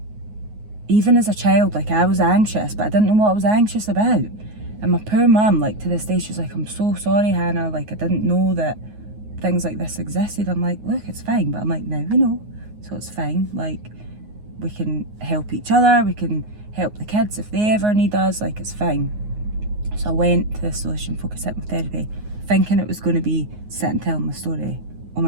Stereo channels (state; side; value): late; left; 9.5 ms